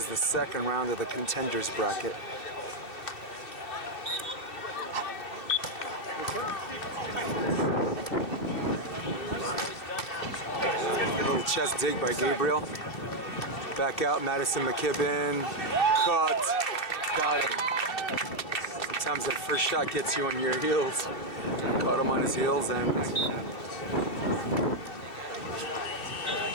the second round of the Contenders bracket. Little chest dig by Gabriel. Back out, Maddison, McKibbin. Cut. Got him. Sometimes that first shot gets you on your heels. Caught him on his heels and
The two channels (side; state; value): right; late; 2.7 ms